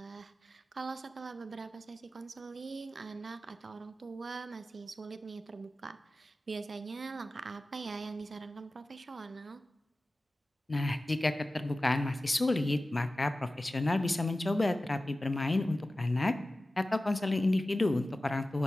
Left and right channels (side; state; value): both; normal; correlation 0.95